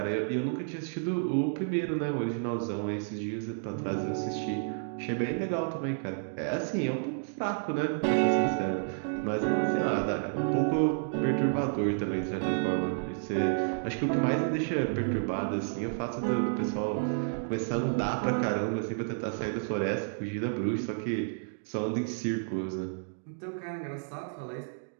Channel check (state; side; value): silent; left; digital silence